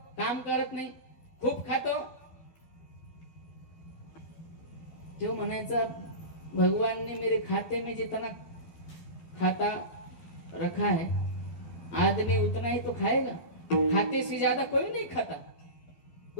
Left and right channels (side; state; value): right; late; 12 ms